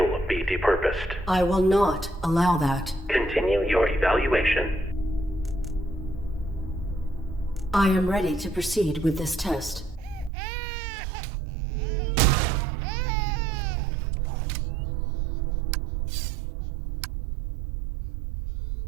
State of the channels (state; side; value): drops out; left; at 10.3 s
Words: be depurposed. I will not allow that. Continue your evaluation. I am ready to proceed with this test.